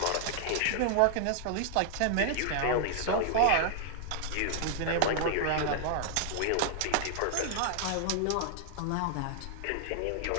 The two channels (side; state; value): both; different; correlation 0.00